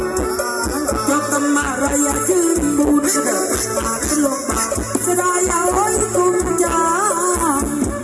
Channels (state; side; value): identical; both; correlation 1.00